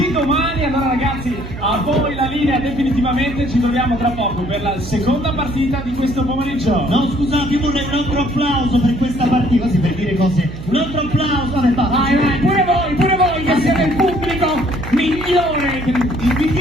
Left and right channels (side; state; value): right; noise; hum, 12 dB below the sound